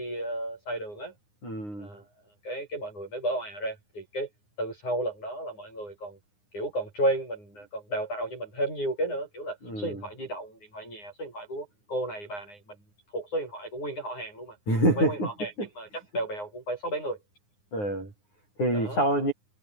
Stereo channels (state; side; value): late; right; 9.7 ms